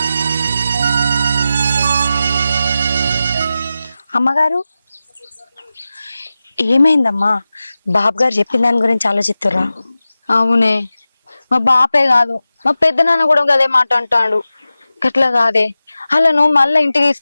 అమ్మగారు ఏమైందమ్మా? బాబు గారు చెప్పిన దాని గురించి ఆలోచిస్తురా? అవునే, మా బాపే కాదు మా పెద్ద నాన్న కూడా అదే మాట అంటాడు. గట్లా కాదే, వాళ్ళను మళ్ళా ఇంటికి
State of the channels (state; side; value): inverted; both; correlation -0.94